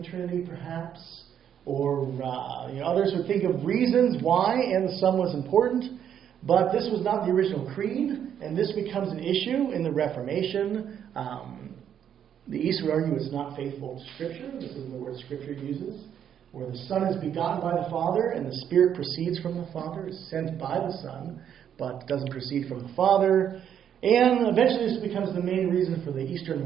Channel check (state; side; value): quieter; left; 9.1 dB